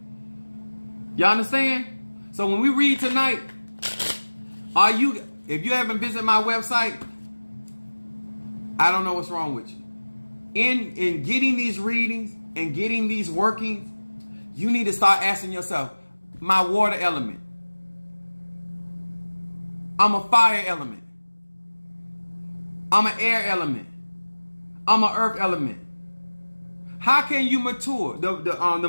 You understand? So when we read tonight, if you haven't visited my website, I don't know what's wrong with you. In getting these readings and getting these workings, you need to start asking yourself, my water element. I'm a fire element. I'm an air element. I'm an earth element. How can you mature?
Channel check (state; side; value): inverted; both; correlation -1.00